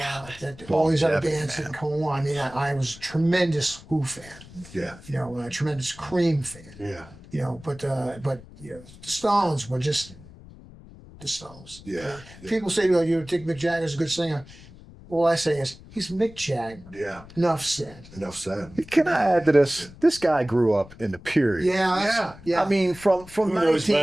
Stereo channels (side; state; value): left; noise; rumble, 20 dB below the sound